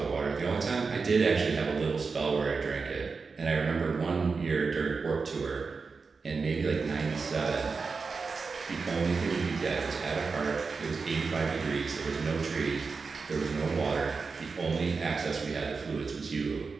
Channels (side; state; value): left; quieter; 4.7 dB